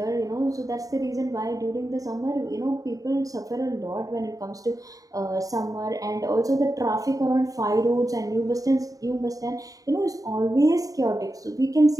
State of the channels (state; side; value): late; left; 0.17 ms